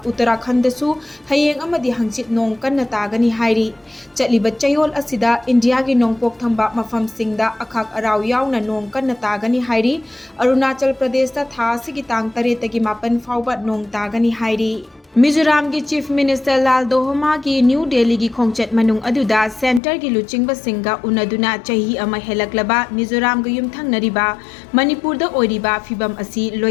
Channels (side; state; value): right; drops out; at 19.8 s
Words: Uttarakhand da su hayeng amadi hangchit nong kanna tagani hairi. Chaliba chayol asida India gi nong pok thamba mafam singda akhak araw yauna nong kanna tagani hairi. Arunachal Pradesh da thasi gi tang tareta gi mapan fawba nong tagani hairi. Mizoram ki Chief Minister Lal Dohoma ki New Delhi ki khongchat manung aduda center ki luchingba singa unaduna chahi ama helaklaba Mizoram ga yumthang nariba Manipur da oiriba fibam asi